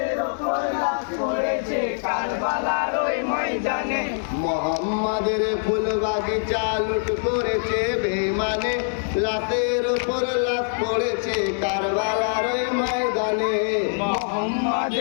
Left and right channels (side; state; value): right; silent; 62 dB below the other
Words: ওপর লাশ পড়েছে কারবালার ওই ময়দানে। মোহাম্মদের ফুল বাগিচা লুট করেছে বেঈমানে, লাশের ওপর লাশ পড়েছে কারবালার ওই ময়দানে।